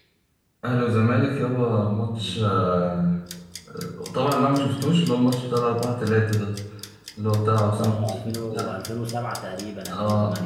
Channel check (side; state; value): both; identical; correlation 1.00